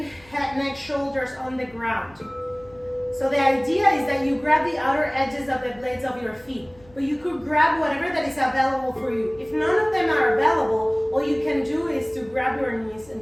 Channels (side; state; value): left; noise; hum, 27 dB below the sound